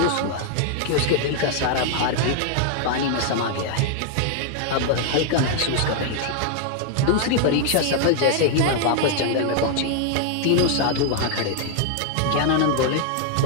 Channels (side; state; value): both; different; correlation 0.00